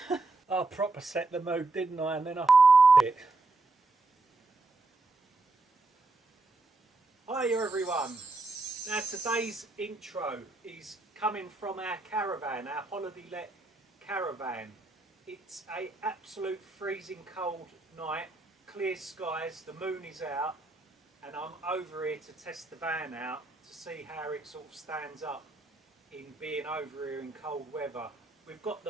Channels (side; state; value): left; quieter; 3.3 dB